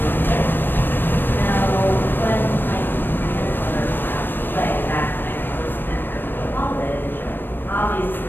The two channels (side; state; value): right; late; 0.095 ms